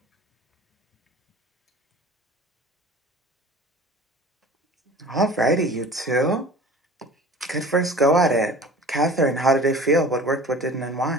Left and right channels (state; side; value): normal; both; correlation 0.42